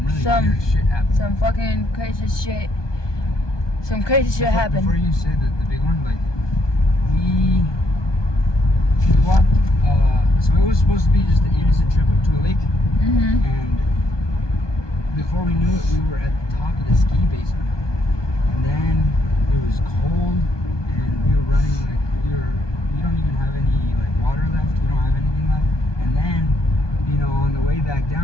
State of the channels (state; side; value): late; right; 1.2 ms